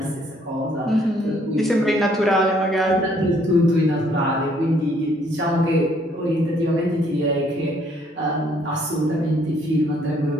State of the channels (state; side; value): normal; both; correlation 0.65